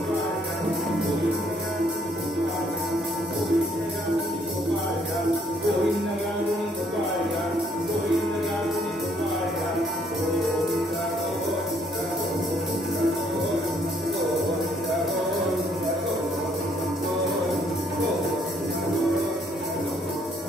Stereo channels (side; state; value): both; normal; correlation 0.67